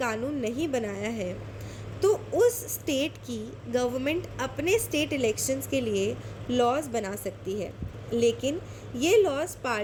कानून नहीं बनाया है, तो उस स्टेट की गवर्नमेंट अपने स्टेट इलेक्शंस के लिए लॉज बना सकती है, लेकिन ये लॉज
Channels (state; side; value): identical; both; correlation 1.00